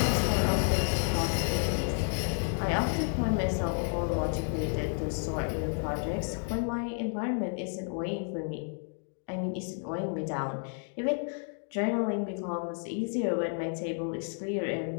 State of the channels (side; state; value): right; silent; 57 dB below the other